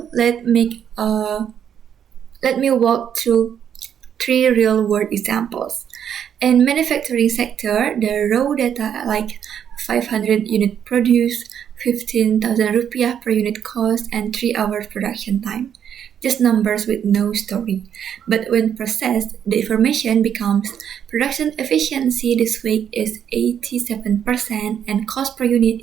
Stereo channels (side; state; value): left; quieter; 8.8 dB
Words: let me walk through three real-world examples. In manufacturing sector, the raw data like 500 unit produced, 15,000 rupiah per unit cost, and 3 hours production time. Just numbers with no story. But when processed, the information becomes production efficiency this week is 87% and cost per unit